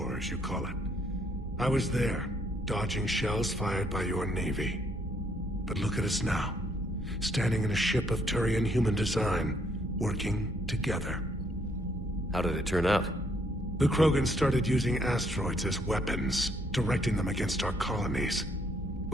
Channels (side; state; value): both; normal; correlation 0.69